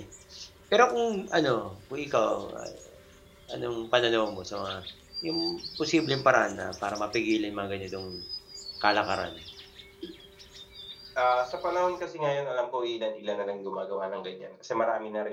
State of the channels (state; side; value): identical; both; correlation 1.00